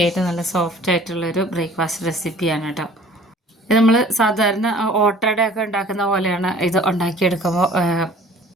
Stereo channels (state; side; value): normal; both; correlation 0.50